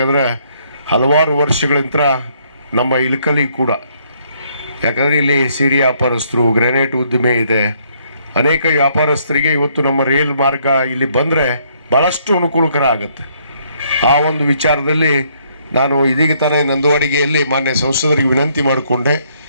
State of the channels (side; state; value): both; inverted; correlation -0.68